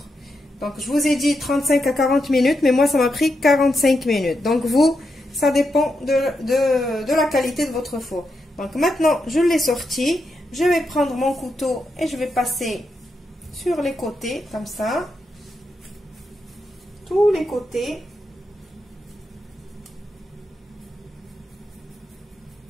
Donc, je vous ai dit 35 à 40 minutes, mais moi, ça m'a pris 45 minutes. Donc, vous, ça dépend de la qualité de votre four. Donc, maintenant, je l'ai sorti. Je vais prendre mon couteau et je vais passer sur les côtés, comme ça. Tous les côtés.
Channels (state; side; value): normal; both; correlation 0.84